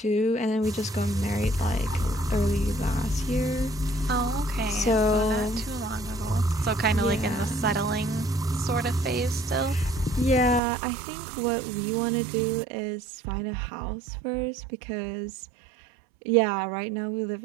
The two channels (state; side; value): drops out; left; at 10.6 s